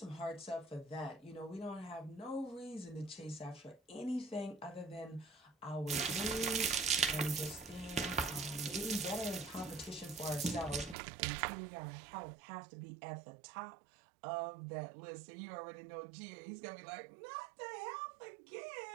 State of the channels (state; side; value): drops out; left; at 11.0 s